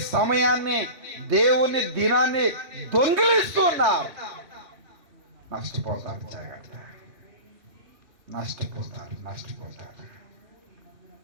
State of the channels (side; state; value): left; late; 3.2 ms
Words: సమయాన్ని, దేవుని దినాన్ని దొంగిలిస్తున్నారు. నష్టపోతారు, జాగ్రత్త. నష్టపోతారు.